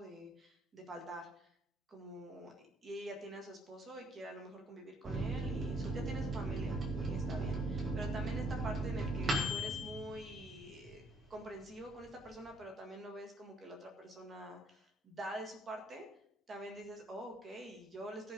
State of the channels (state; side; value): normal; both; correlation 0.66